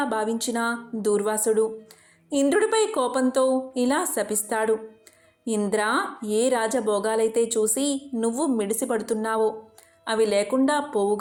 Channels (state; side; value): identical; both; correlation 1.00